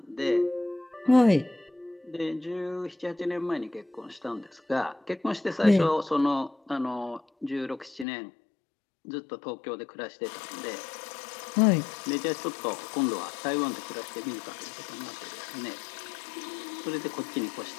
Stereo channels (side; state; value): right; drops out; at 8.1 s